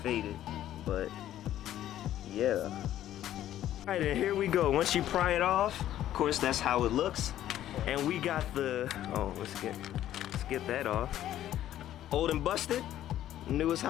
faded, but yeah. All right, and here we go. Once you pry it off, of course, that's how it looks. And we got the, oh, let's get that off. Old and busted, new as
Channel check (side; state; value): right; quieter; 12.4 dB